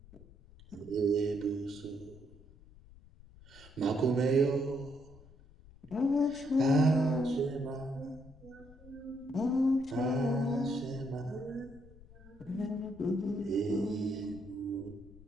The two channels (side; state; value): left; noise; rumble, 21 dB below the sound